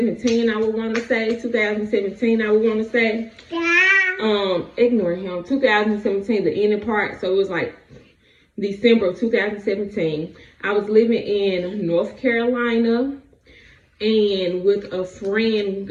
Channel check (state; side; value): identical; both; correlation 1.00